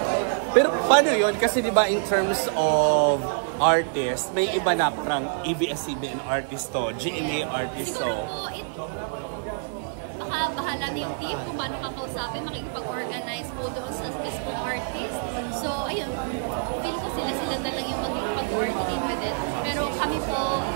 Pero paano yun? Kasi diba in terms of artist, may iba na parang ABS-CBN artist to, GMA artist to. Siguro po, baka bahala na yung team kung paano kakausapin, makikipag-organize po doon sa mismong artist. So, ayun, feel ko sila na lang yung makikipag-coordinate with it. Pero kami po,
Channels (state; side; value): silent; left; digital silence